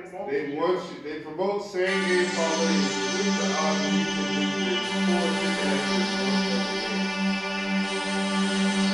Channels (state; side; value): identical; both; correlation 1.00